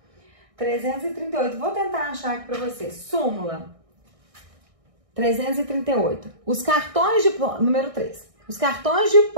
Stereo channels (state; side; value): late; left; 1.6 ms